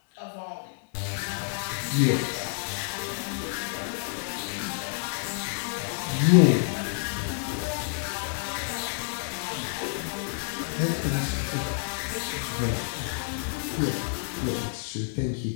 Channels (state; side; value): silent; right; digital silence